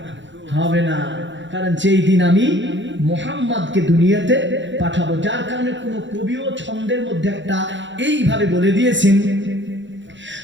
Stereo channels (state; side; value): late; left; 0.54 ms